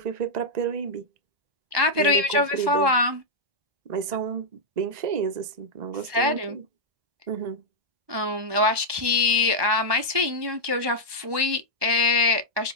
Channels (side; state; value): left; late; 1.2 ms